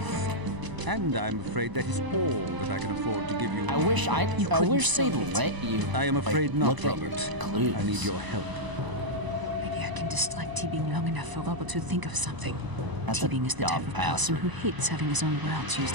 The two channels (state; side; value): late; left; 1.0 ms